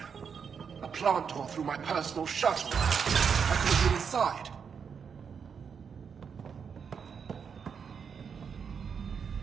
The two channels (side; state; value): left; quieter; 6.6 dB